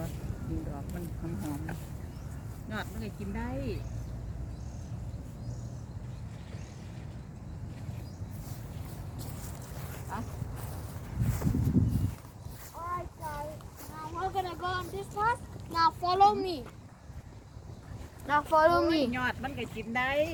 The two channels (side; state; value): both; identical; correlation 1.00